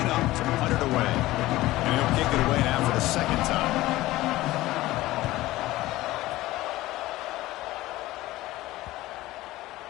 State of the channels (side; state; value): right; quieter; 17.3 dB